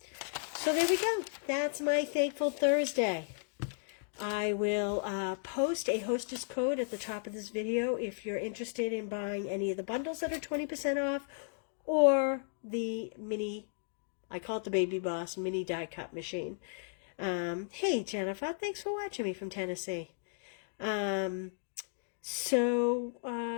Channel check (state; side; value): silent; right; digital silence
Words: So there we go. That's my Thankful Thursday. I will post a hostess code at the top of this video if you're interested in buying any of the bundles that are 20% off, or the mini, I call it the Baby Boss mini die cut machine. Hey, Jennifer, thanks for watching me from Tennessee.